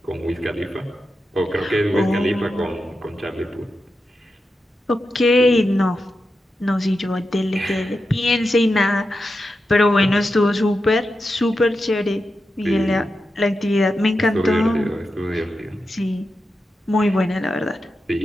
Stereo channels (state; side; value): normal; both; correlation 0.89